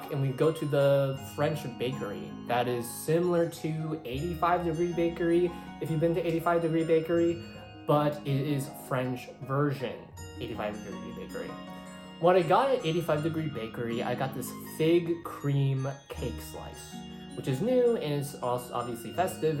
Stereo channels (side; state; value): both; identical; correlation 1.00